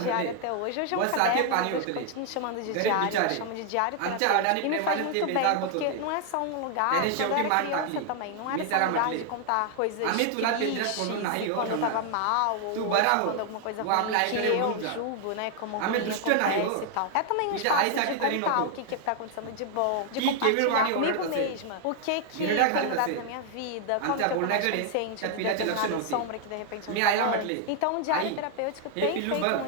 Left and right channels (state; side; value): different; both; correlation 0.00